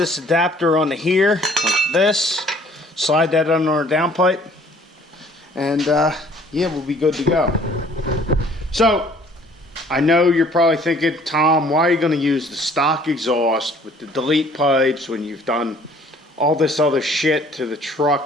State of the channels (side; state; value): both; normal; correlation 0.56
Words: adapter onto here, like this. Slide that under our downpipe. And yeah, we'll be good to go. So, I know you're probably thinking, Tom, why are you going to use the stock exhaust with the delete pipes when you've done all this other shit to the